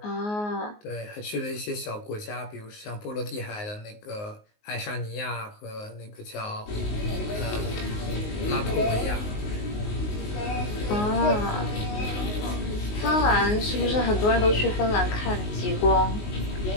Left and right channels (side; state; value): right; late; 19 ms